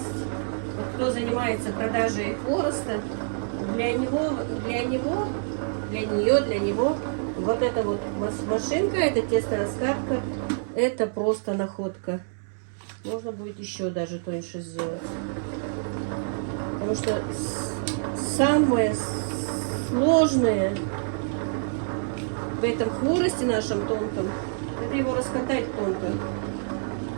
Вот кто занимается продажей хвороста, для него Вот эта вот машинка, эта тесто-раскатка, это просто находка. Можно будет еще даже тоньше сделать. Потому что самое сложное в этом хворосте нашем тонком, это его раскатать тонко.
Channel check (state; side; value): silent; left; digital silence